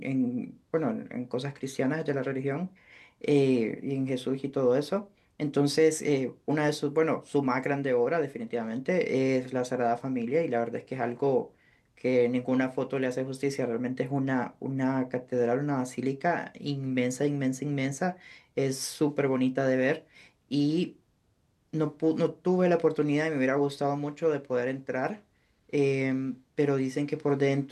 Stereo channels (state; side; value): identical; both; correlation 1.00